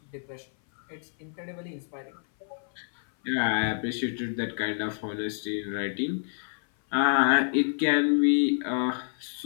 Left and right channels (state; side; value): silent; right; 57 dB below the other